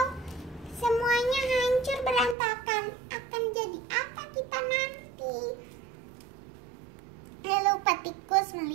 semuanya hancur berantakan. Akan jadi apa kita nanti? Lalu Pak Tikus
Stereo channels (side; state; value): left; drops out; at 2.4 s